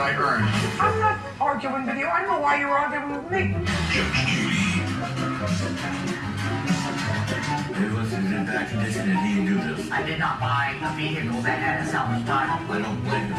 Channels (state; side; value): identical; both; correlation 1.00